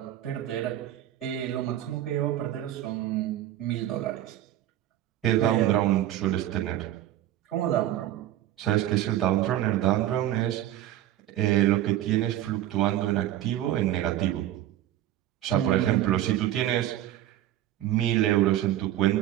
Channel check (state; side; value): quieter; left; 13.0 dB